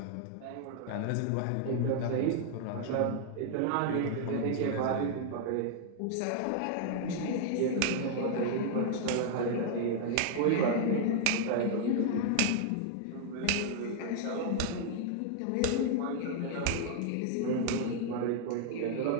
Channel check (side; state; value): both; different; correlation -0.01